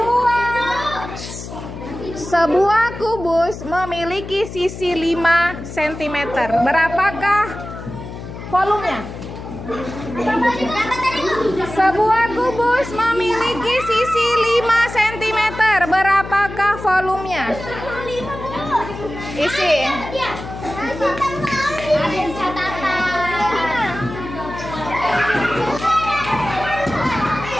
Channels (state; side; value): noise; left; hum, 11 dB below the sound